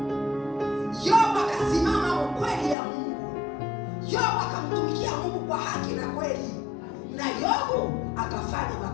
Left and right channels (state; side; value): drops out; right; at 2.8 s